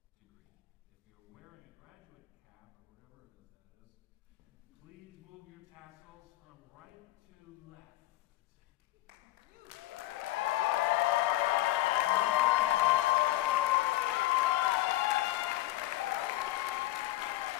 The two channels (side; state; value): right; quieter; 16.7 dB